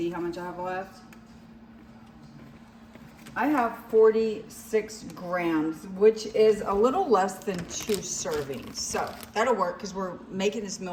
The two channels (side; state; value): both; identical; correlation 1.00